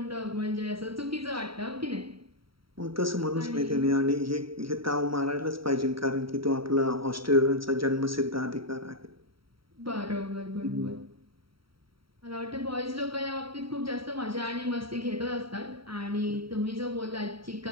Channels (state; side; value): late; left; 0.75 ms